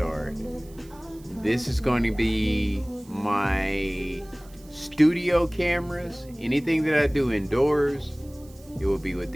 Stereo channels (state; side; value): noise; right; hiss, 25 dB below the sound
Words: This is going to be my studio cameras. Anything that I do indoors, it will be with